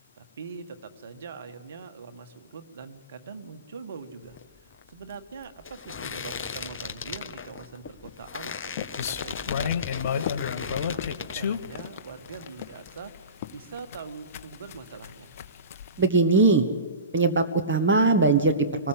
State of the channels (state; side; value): inverted; both; correlation -0.32